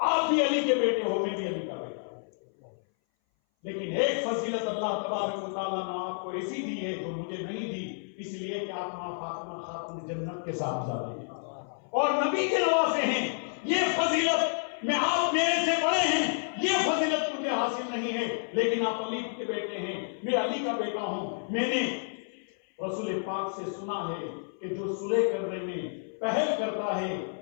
بھی علی کے بیٹے ہو، میں بھی علی کا بیٹا ہوں، لیکن ایک فضیلت اللہ تبارک و تعالیٰ نے آپ کو ایسی دی ہے جو مجھے نہیں دی، اس لیے کہ آپ ماں فاطمہ خاتون جنت کے ساتھ جاتے ہیں اور نبی کے نواسے ہیں۔ یہ فضیلت میں آپ میرے سے بڑے ہیں، یہ فضیلت مجھے حاصل نہیں ہے، لیکن آپ علی کے بیٹے ہیں، میں علی کا بیٹا ہوں۔ میں نے رسول پاک سے سنا ہے کہ جو صلح کرنے میں پہل کرتا ہے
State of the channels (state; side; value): silent; right; 58 dB below the other